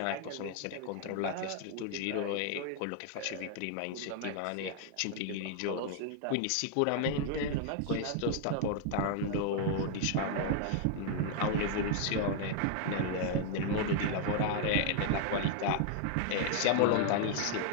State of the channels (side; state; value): both; different; correlation 0.00